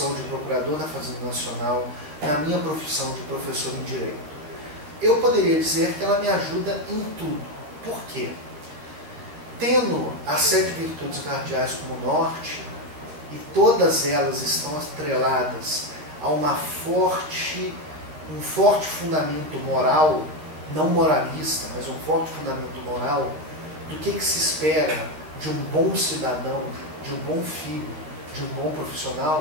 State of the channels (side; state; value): left; late; 13 ms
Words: de procurador da Fazenda Nacional, na minha profissão de professor em Direito? Eu poderia dizer que ela me ajuda em tudo. Por quê? Tendo as 7 virtudes cardeais como norte, e todas elas estão atreladas a um forte fundamento moral, não moralista, mas um forte fundamento moral, do que se espera de um bom cidadão, de um bom filho, de um bom